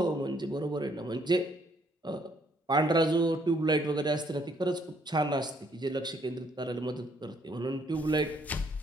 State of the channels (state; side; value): normal; both; correlation 0.67